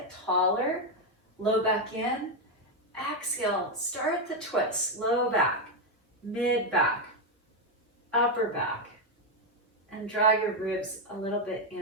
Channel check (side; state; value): both; normal; correlation 0.04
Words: taller, low back in. Exhale, start the twist, low back, mid back, upper back, and draw your ribs a little bit